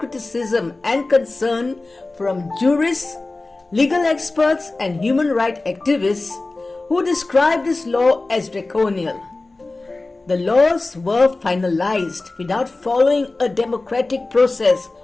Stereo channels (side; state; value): right; quieter; 3.2 dB